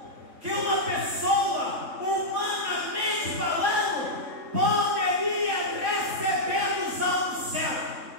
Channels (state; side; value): late; left; 3.6 ms